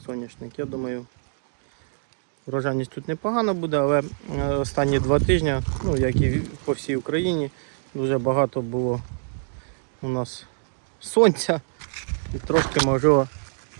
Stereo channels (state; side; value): silent; left; 62 dB below the other